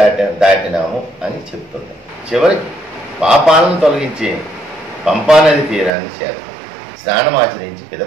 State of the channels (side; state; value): left; drops out; at 5.9 s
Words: దాటినాము అని చెప్తున్నాం. చివరికి పాపాలను తొలగించే పంపానది తీరాన్ని చేరుతాం. స్నానమాచరించి